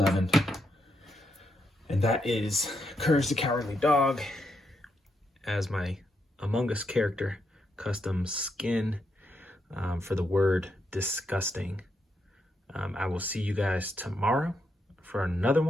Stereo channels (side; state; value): both; normal; correlation 0.80